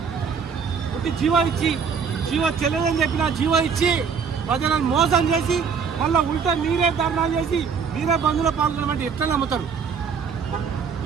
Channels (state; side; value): quieter; left; 6.2 dB